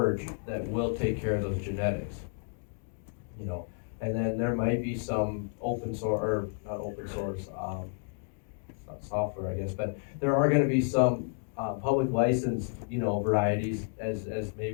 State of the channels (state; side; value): silent; right; 57 dB below the other